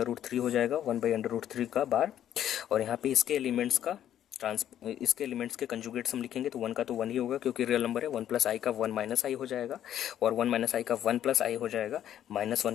हो जाएगा, 1/√3 का बार। और यहाँ पे इसके एलिमेंट्स का इसके एलिमेंट्स के कंजुगेट्स हम लिखेंगे तो 1 का तो 1 ही होगा क्योंकि रियल नंबर है। 1 प्लस आई का 1 माइनस आई हो जाएगा और 1 माइनस आई का 1 प्लस आई हो जाएगा। -1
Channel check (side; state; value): right; quieter; 10.8 dB